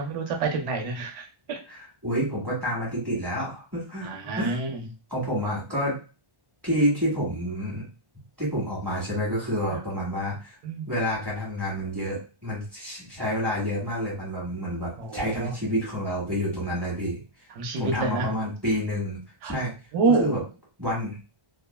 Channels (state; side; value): late; left; 1.1 ms